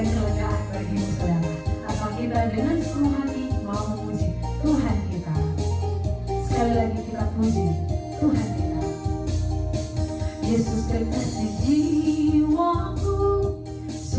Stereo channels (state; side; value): identical; both; correlation 1.00